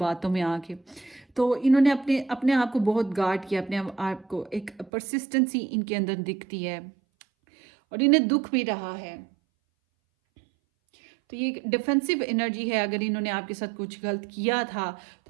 में आके। तो इन्होंने अपने अपने आप को बहुत गार्ड किया, अपने आप को, एक परसिस्टेंसी इनके अंदर दिखती है, और इन्हें दुख भी रहा है। तो ये एक डिफेंसिव एनर्जी है। अगर इन्होंने आपके साथ कुछ गलत किया था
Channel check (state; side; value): drops out; left; at 4.9 s